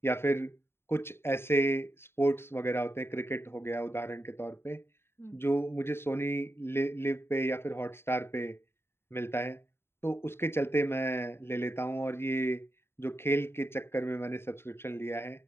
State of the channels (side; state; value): right; late; 0.11 ms